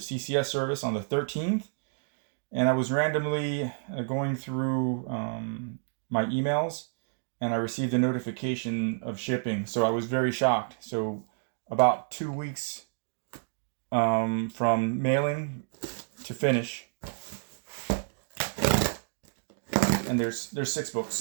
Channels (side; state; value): left; silent; digital silence